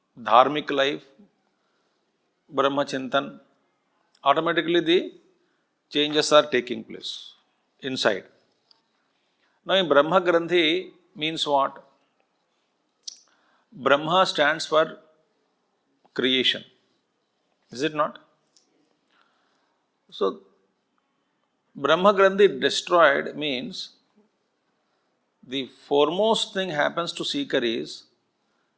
dharmic life, Brahma Chintan, automatically the changes are taking place inside. Now in Brahma Granthi means what? Brahma stands for creation. Is it not? So Brahma Granthi destroyed means the foremost thing happens to seeker is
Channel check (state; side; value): identical; both; correlation 1.00